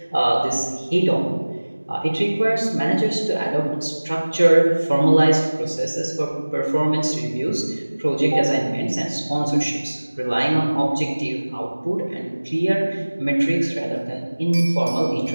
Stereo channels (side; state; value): both; inverted; correlation -1.00